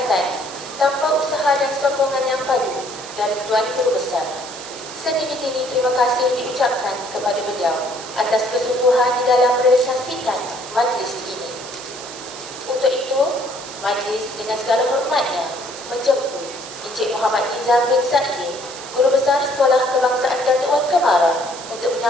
tanpa usaha dan sokongan yang padu dari Tuan Guru Besar. Setinggi-tinggi terima kasih diucapkan kepada beliau atas kesungguhan di dalam merealisasikan majlis ini. Untuk itu, majlis dengan segala hormatnya menjemput Encik Muhammad Nizam bin Sa'id, Guru Besar Sekolah Kebangsaan Datuk Wan Kemara, untuk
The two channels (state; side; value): noise; right; hiss, 13 dB below the sound